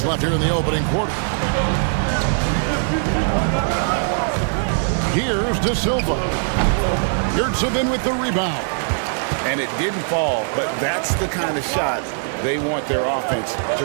left here in the opening quarter. Here's De Silva. Yurtsevin with the rebound. And it didn't fall, but that's the kind of shot they want their offense to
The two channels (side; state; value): left; silent; digital silence